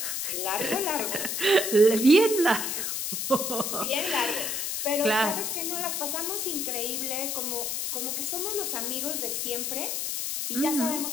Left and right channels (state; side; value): noise; left; hiss, 2 dB below the sound